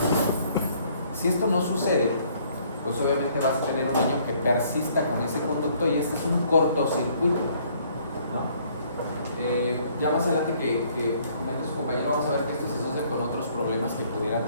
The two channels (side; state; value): both; inverted; correlation -0.63